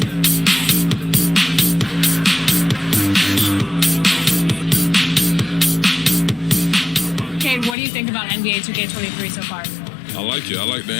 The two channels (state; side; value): drops out; right; at 7.8 s